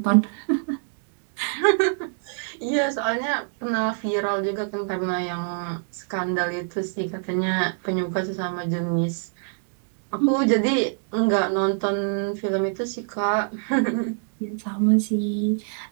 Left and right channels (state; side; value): silent; left; digital silence